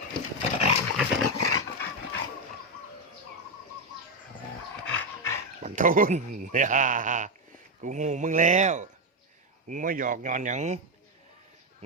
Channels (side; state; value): both; normal; correlation 0.06